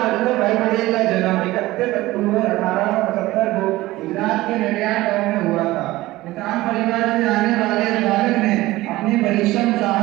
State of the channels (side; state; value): left; quieter; 18.0 dB